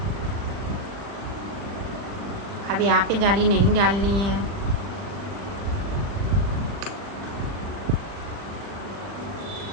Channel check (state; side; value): late; left; 40 ms